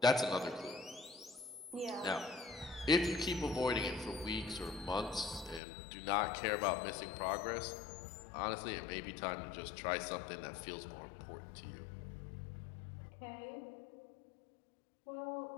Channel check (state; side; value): drops out; right; at 5.6 s